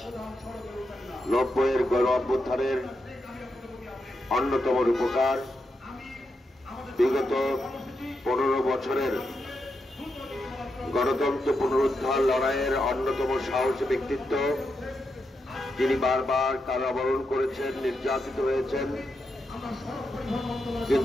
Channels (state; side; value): normal; both; correlation 0.85